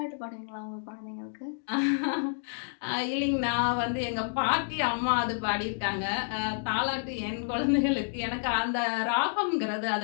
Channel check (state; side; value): silent; right; digital silence